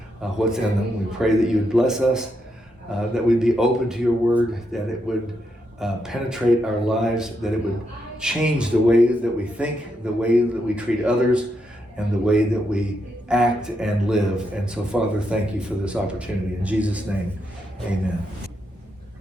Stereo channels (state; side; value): normal; both; correlation 0.81